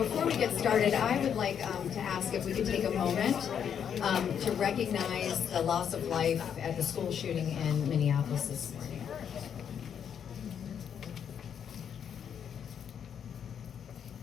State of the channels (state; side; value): quieter; right; 8.2 dB